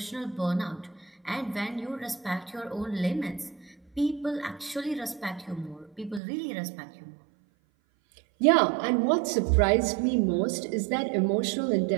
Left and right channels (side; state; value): left; drops out; at 6.2 s